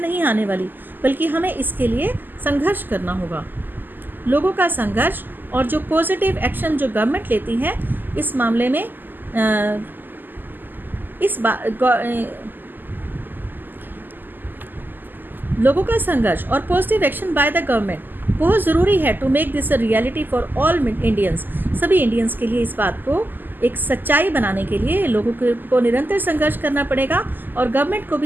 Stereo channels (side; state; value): left; late; 0.089 ms